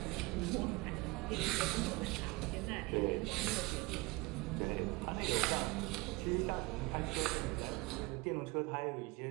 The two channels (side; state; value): left; quieter; 23.9 dB